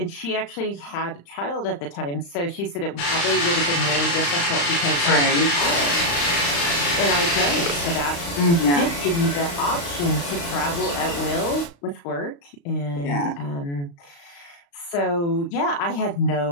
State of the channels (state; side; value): late; right; 35 ms